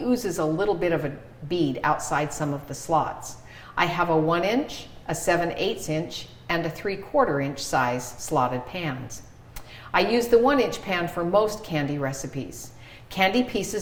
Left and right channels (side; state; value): both; identical; correlation 1.00